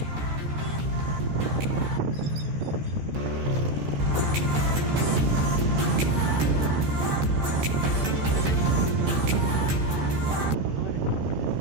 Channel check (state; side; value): late; left; 14 ms